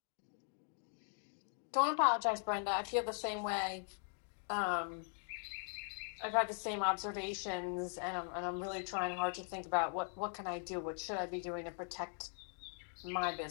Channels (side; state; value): right; silent; 51 dB below the other